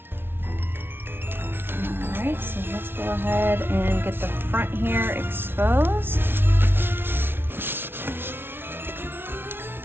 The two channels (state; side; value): late; left; 0.11 ms